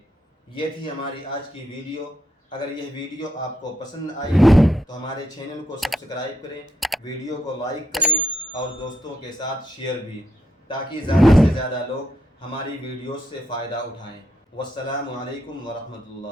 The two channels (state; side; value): normal; both; correlation 0.78